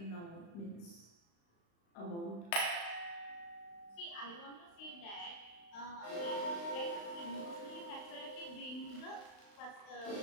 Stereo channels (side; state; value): right; late; 35 ms